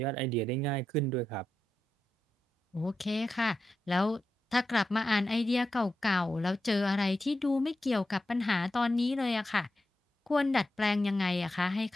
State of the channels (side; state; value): both; normal; correlation 0.88